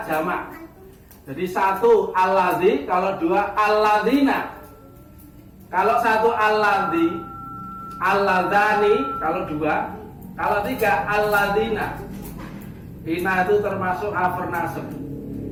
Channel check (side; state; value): both; identical; correlation 1.00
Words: jamak. Jadi satu aladzi, kalau dua aladina. Kalau satu aladzi, aladani, kalau dua. Kalau tiga aladina. Ina itu termasuk harf nasab.